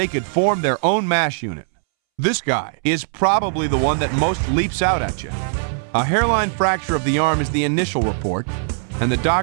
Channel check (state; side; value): silent; left; 66 dB below the other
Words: could form their own MASH unit. This guy is probably the one that most leaps out at you. A hairline fracture of the arm is the initial report, and the